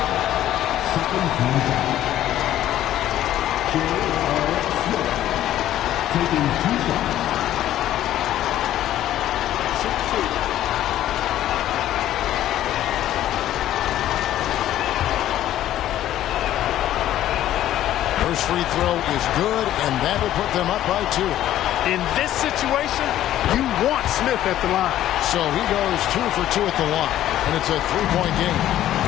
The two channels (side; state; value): right; quieter; 12.7 dB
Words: Taking 2 shots. First free throw is good, and that will put them up by 2. In this situation, you want Smith at the line. So he goes 2 for 2 at the line, and it's a 3-point game.